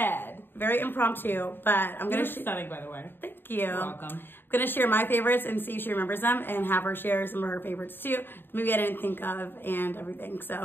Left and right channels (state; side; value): late; right; 0.099 ms